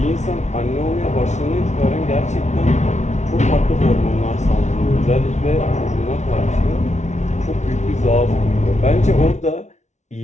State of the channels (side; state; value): right; late; 0.33 ms